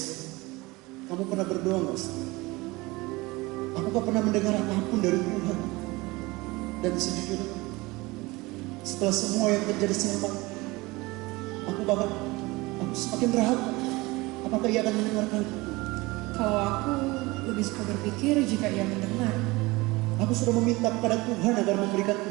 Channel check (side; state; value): left; quieter; 22.3 dB